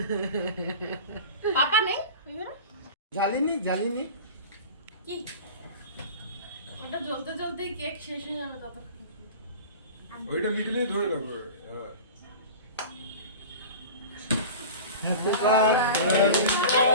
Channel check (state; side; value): inverted; both; correlation -0.35